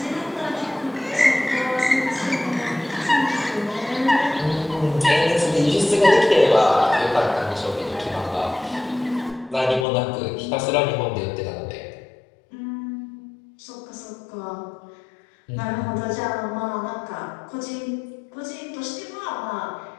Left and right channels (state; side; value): drops out; right; at 9.9 s